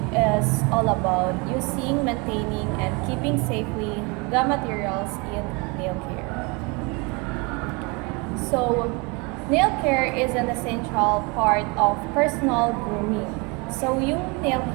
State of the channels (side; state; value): left; quieter; 29.0 dB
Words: is all about using, maintaining, and keeping safely the materials in nail care. So nail care is an essential part of personal grooming. So yung nail